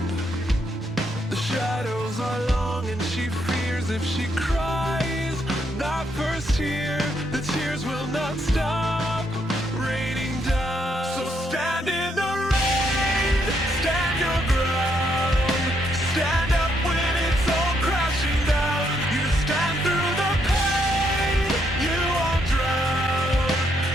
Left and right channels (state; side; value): normal; both; correlation 0.75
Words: The shadows are long and she fears if she cries that first tear, the tears will not stop raining down. So stand in the rain, stand your ground, stand up when it's all crashing down. You stand through the pain, you won't drown,